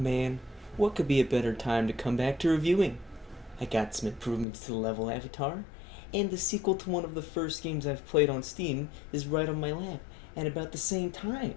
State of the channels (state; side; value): drops out; right; at 4.5 s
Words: Man, what could be a better time to come back to reviewing? I got some improvements to the level avatar, and the sequel to one of the first games I've played on Steam is right on my lap at about the same time.